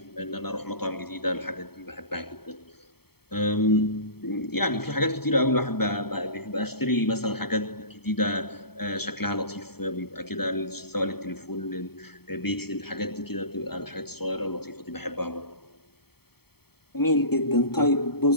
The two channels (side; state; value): right; late; 0.96 ms